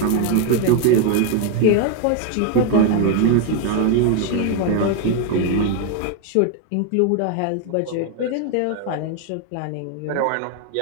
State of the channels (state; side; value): different; both; correlation 0.01